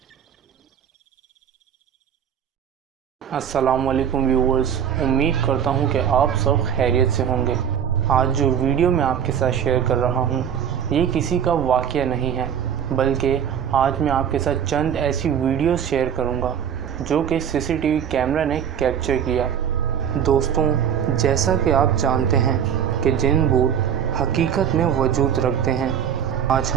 अस्सलाम वालेकुम व्यूअर्स, उम्मीद करता हूं कि आप सब खैरियत से होंगे। आज जो वीडियो मैं आपके साथ शेयर कर रहा हूं, ये किसी का वाक़या नहीं है, बल्कि आज मैं आपके साथ चंद ऐसी वीडियोस शेयर करूंगा जो कि सीसीटीवी कैमरा ने कैप्चर किया। दोस्तों, जैसा कि आप जानते हैं कि जिन भूत हकीकत में वजूद रखते हैं, आज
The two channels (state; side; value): quieter; left; 8.6 dB